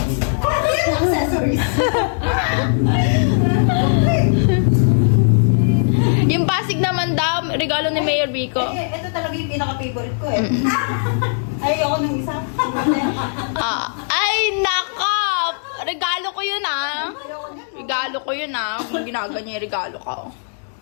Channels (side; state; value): right; silent; digital silence